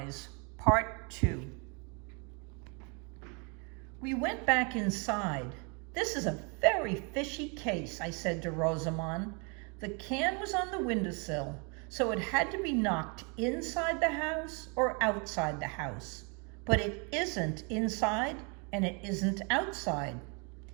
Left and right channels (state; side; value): quieter; left; 33.8 dB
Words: Part 2. We went back inside. "This is a very fishy case," I said to Rosamond. "The can was on the windowsill, so it had to be knocked inside the house or outside the house. But it isn't inside and it isn't outside."